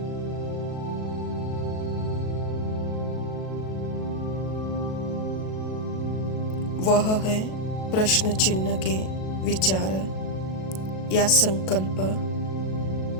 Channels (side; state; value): right; late; 37 ms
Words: वह है प्रश्न चिन्ह के विचार या संकल्प,